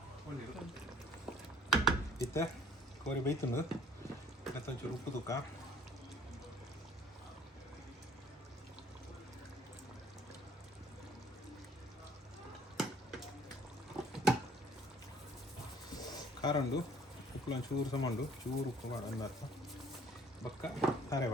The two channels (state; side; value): normal; both; correlation 0.54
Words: ಇತ್ತ ಕೋರಿ ಬೈತುಂಡು ಮತ್ತು ಒಂಚೂರು ಉಪ್ಪು ತುಕ್ಕ ಕಾರಂಡು ಉಪ್ಪು ಚೂರು ಸಮಾಂಡು ಚೂರು ಉಪ್ಪು ಮಾಡು ಅಂದರ್ಥ ಬಕ್ಕ ತಾರೆ